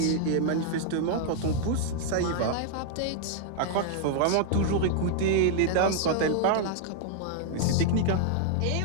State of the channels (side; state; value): both; different; correlation 0.00